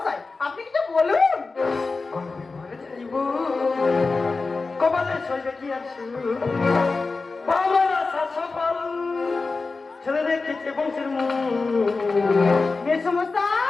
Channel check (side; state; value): right; quieter; 4.0 dB